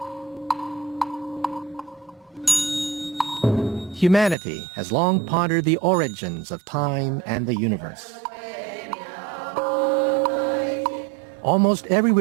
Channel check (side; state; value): left; drops out; at 4.4 s